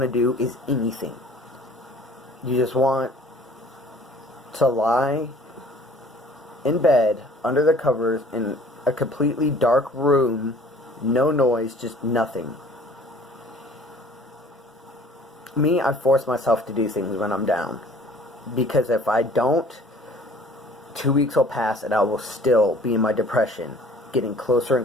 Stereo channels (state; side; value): normal; both; correlation 0.51